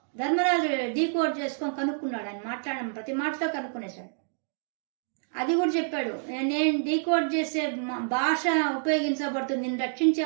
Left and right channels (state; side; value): silent; left; digital silence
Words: ధర్మరాజు డీకోడ్ చేసుకొని కనుక్కున్నాడు, ఆయన మాట్లాడడం ప్రతి మాటతో కనుక్కునేశాడు. అది కూడా చెప్పాడు, నేను డీకోడ్ చేసే భాష ఉపయోగించబడుతుంది, నేను